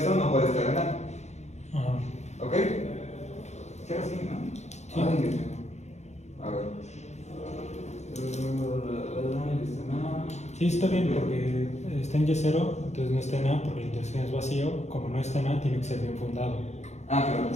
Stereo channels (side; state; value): right; late; 0.33 ms